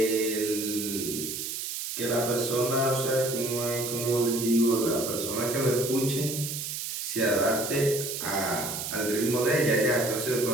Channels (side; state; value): right; noise; hiss, 5 dB below the sound